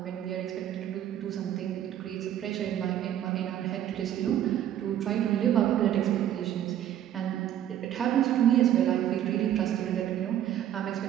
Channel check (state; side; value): quieter; left; 11.1 dB